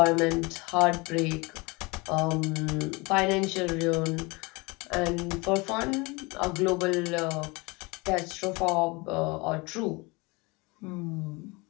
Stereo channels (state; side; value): quieter; right; 26.0 dB